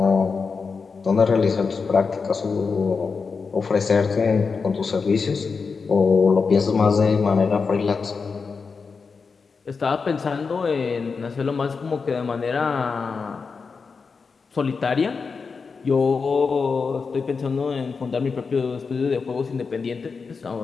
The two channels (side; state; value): right; quieter; 5.0 dB